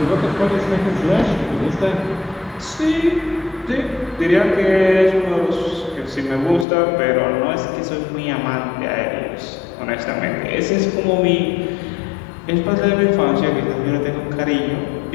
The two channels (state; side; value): drops out; right; at 6.7 s